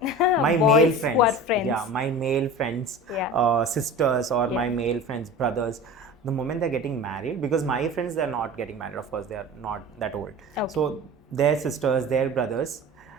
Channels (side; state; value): both; normal; correlation 0.36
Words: My male friends. Yeah, my male friends, sisters, or my male friends' brothers. The moment they're getting married, because my friends, they're not getting married, of course, they are not that old. Okay. So their sisters, their brothers,